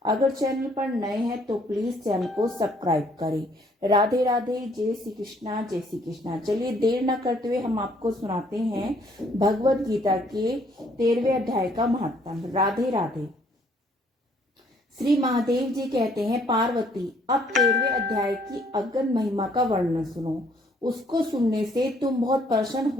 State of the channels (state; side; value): normal; both; correlation 0.64